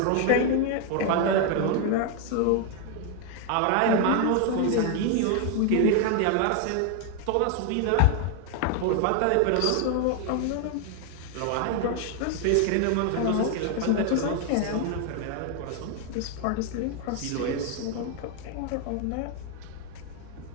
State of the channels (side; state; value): both; different; correlation 0.00